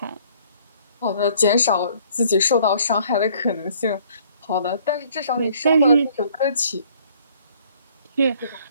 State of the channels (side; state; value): both; inverted; correlation -0.59